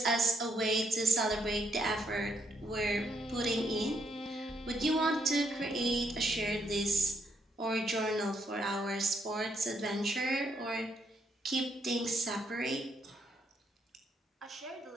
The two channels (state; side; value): normal; both; correlation 0.74